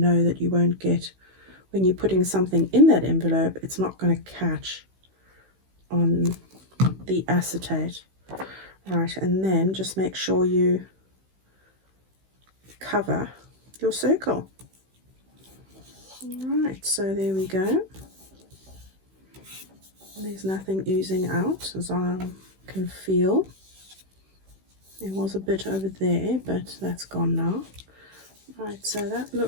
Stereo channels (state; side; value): late; left; 16 ms